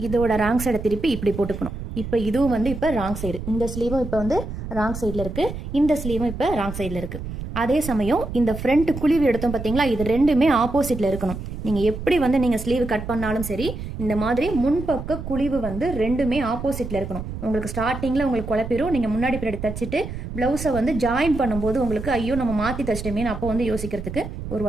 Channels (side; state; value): right; noise; rumble, 8 dB below the sound